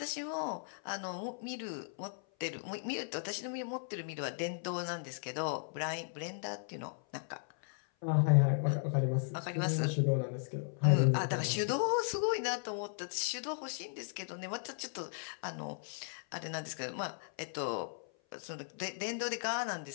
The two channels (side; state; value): right; silent; 53 dB below the other